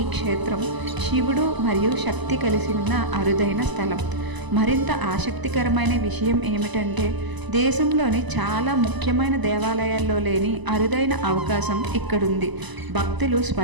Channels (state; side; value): late; left; 1.0 ms